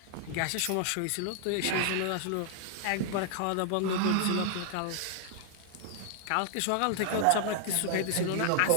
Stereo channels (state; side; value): different; both; correlation 0.00